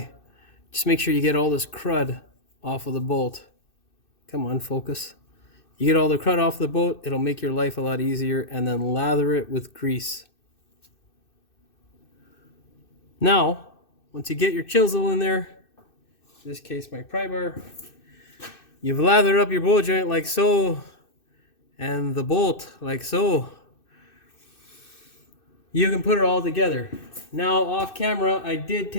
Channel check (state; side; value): late; right; 2.6 ms